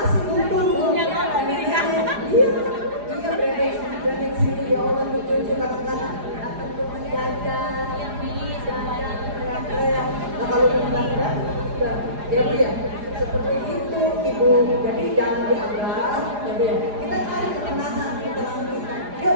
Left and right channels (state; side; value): late; left; 4.9 ms